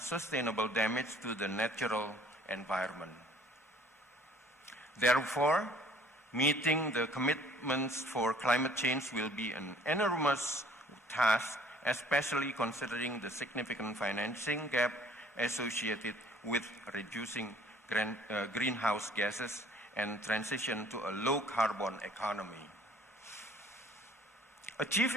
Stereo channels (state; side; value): normal; both; correlation 0.56